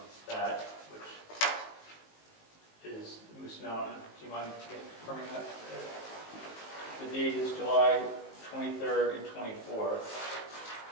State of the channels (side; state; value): right; late; 19 ms